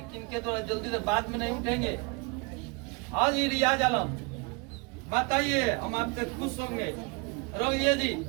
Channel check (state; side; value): quieter; left; 29.8 dB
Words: किनके द्वारा? जल्दी से बाद में नहीं उठेंगे। हाँ जी रियाज आलम बताइए, हम आपसे खुश होंगे। रोहिए जी